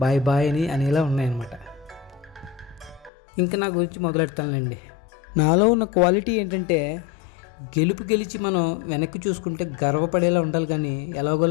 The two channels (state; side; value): drops out; right; at 3.1 s